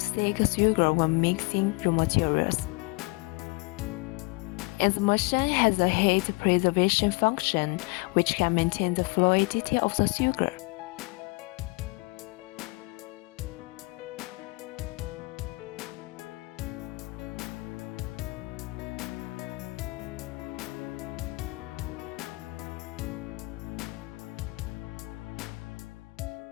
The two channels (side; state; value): right; quieter; 27.2 dB